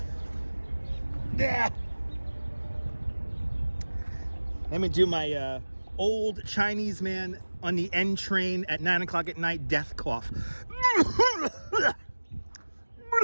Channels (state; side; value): inverted; both; correlation -1.00